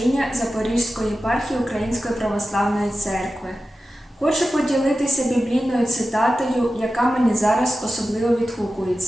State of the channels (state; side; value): normal; both; correlation 0.93